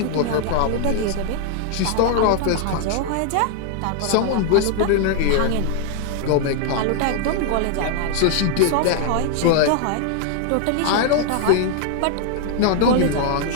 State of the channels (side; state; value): both; different; correlation 0.00